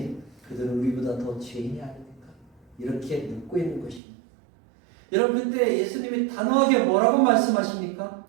그들은 우리보다 더 죄인이 아닙니까? 이렇게 묻고 있는 것입니다. 여러분 그때 예수님이 단호하게 뭐라고 말씀하십니까?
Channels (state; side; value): drops out; left; at 4.0 s